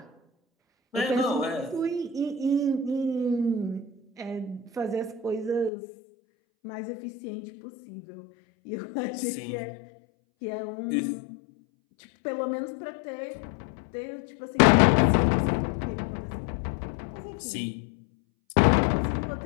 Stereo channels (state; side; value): drops out; right; at 5.7 s